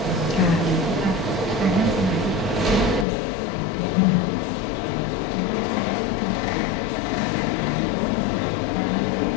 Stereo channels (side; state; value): right; drops out; at 3.1 s